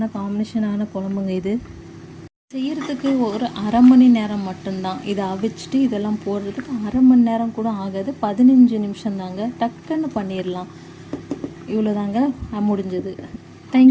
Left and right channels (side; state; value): both; identical; correlation 1.00